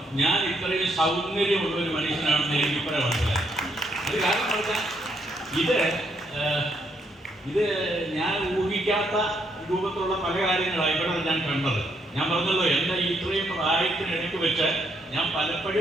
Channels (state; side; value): normal; both; correlation 0.74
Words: ഞാൻ ഇത്രയും സൗന്ദര്യമുള്ള ഒരു മനുഷ്യനാണെന്ന് എനിക്ക് ഇപ്പോഴാണ് മനസ്സിലായി. അത് കാരണം പറഞ്ഞാൽ ഇത് ഞാൻ ഊഹിക്കാത്ത രൂപത്തിലുള്ള പല കാര്യങ്ങളാണ് ഇവിടെ ഞാൻ കണ്ടത്. ഞാൻ പറഞ്ഞല്ലോ, എൻ്റെ ഇത്രയും പ്രായത്തിനിടയ്ക്ക് വെച്ച് ഞാൻ